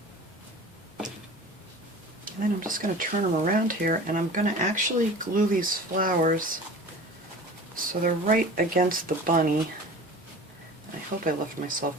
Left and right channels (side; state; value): both; normal; correlation 0.39